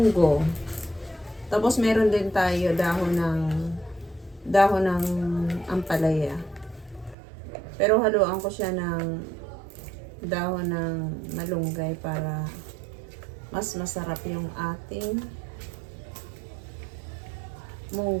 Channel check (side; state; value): left; drops out; at 7.2 s